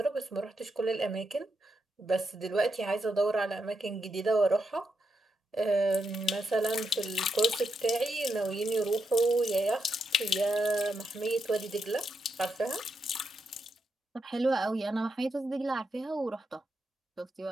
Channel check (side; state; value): both; normal; correlation 0.83